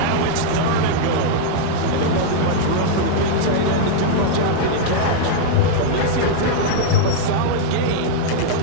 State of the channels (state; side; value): different; both; correlation -0.01